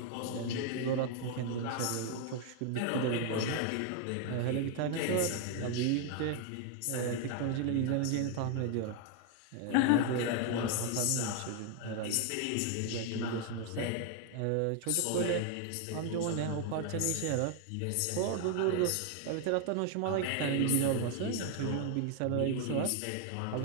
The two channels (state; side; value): different; both; correlation 0.00